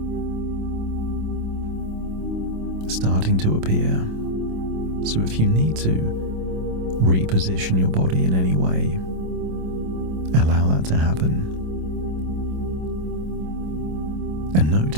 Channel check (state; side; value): late; left; 26 ms